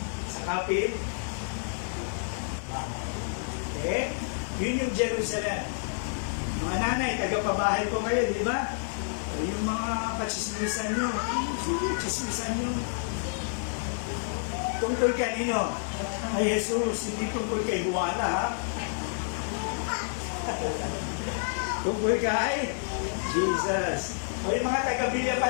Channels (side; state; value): right; silent; digital silence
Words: Sa kapit, yun yung Jerusalem. Mga nanay, tagapabahay po kayo, di ba? Yung mga katsismisan nyo, katsismisan nyo. Tungkol kanino? Ay Jesus, hindi tungkol kay Juana, ha? Tungkol kay Jesus. O yung mga taga-Bilya